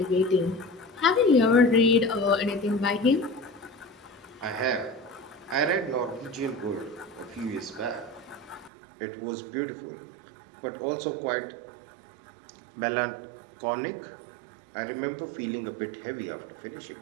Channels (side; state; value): left; drops out; at 8.7 s